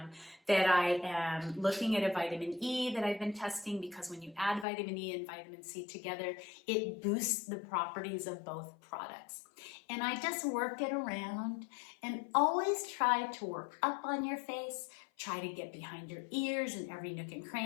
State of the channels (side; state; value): right; drops out; at 4.7 s